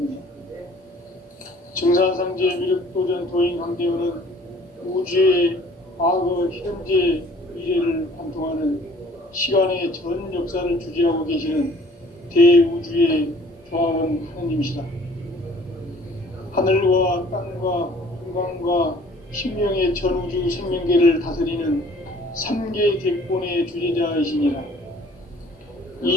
증산상제 미륵도전 도인 강대훈은 우주의 과거, 현재, 미래를 관통하는 시간의 전 역사를 주재하고 계시는 대우주의 조화원 하느님이시다. 하늘과 땅과 공간과 신명의 전우주 생명계를 다스리는 3개 대권의 주재자이시니라.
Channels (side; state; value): both; normal; correlation 0.54